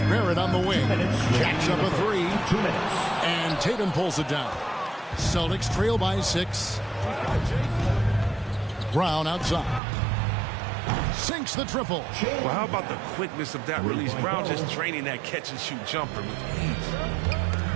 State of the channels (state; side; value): drops out; left; at 9.8 s